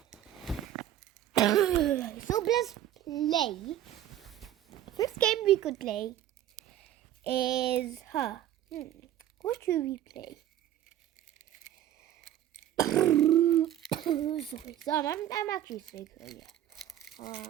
So let's play. First game we could play is what should we play? Sorry, I'm actually sick. So yeah.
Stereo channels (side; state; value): left; quieter; 12.1 dB